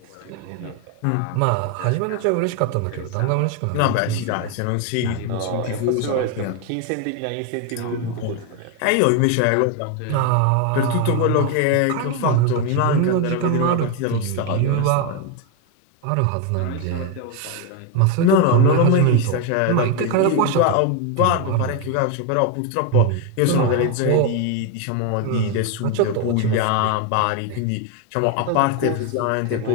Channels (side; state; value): both; different; correlation 0.02